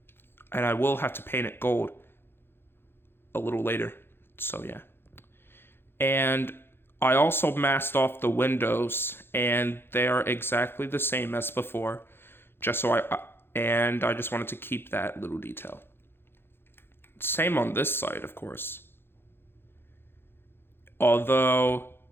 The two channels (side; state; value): right; late; 0.11 ms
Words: and I will have to paint it gold a little later, so yeah. And I also masked off the windows, and they are exactly the same as before, I just wanted to keep that little detail. Same on this side, of course. Although